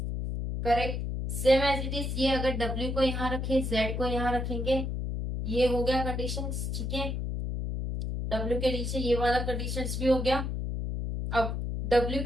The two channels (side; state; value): left; noise; hum, 2 dB below the sound